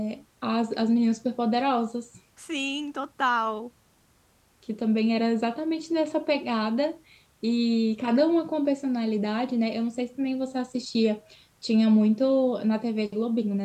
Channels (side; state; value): both; identical; correlation 1.00